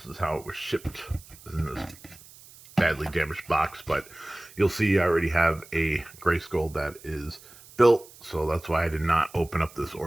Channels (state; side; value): noise; right; hiss, 21 dB below the sound